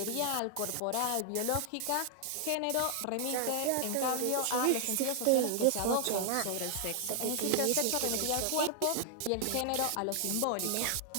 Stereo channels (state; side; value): different; both; correlation 0.00